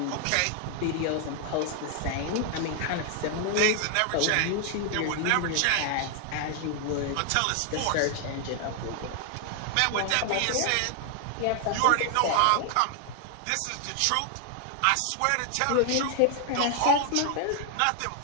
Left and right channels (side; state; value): both; different; correlation 0.00